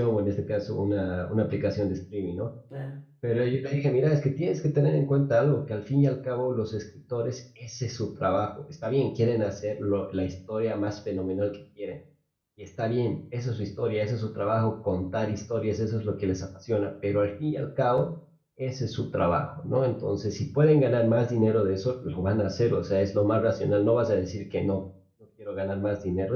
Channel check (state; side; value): identical; both; correlation 1.00